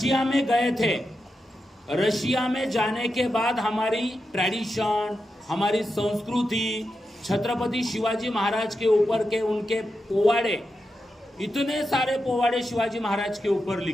में गए थे, रशिया में जाने के बाद हमारी ट्रेडिशन, हमारी संस्कृति, छत्रपति शिवाजी महाराज के ऊपर के उनके पोवाड़े, इतने सारे पोवाड़े शिवाजी महाराज के ऊपर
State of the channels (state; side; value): normal; both; correlation 0.88